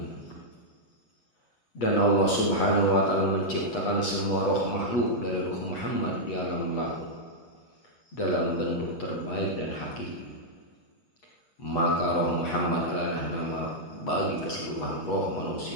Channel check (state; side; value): late; right; 8.2 ms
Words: Dan Allah subhanahu wa ta'ala menciptakan semua roh makhluk dari ruh Muhammad di alam lahut dalam bentuk terbaik dan hakiki. Maka roh Muhammad adalah nama bagi keseluruhan roh